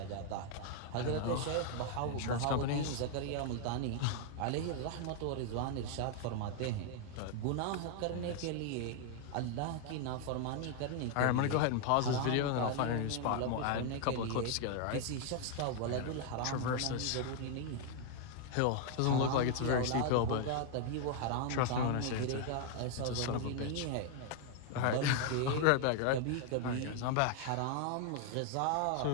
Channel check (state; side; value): different; both; correlation 0.00